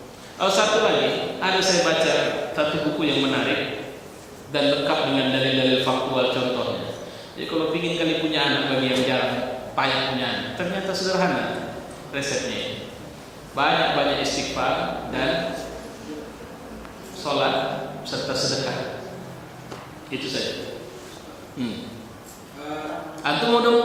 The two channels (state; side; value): identical; both; correlation 1.00